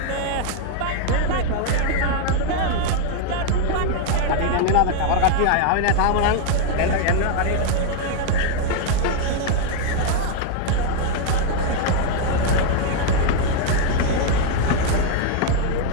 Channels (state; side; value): different; both; correlation 0.00